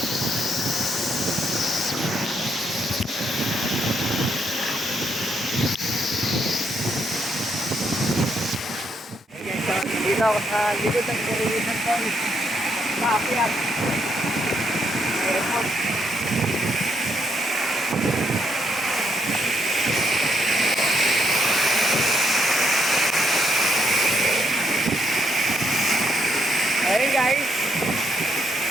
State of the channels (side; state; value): both; normal; correlation 0.76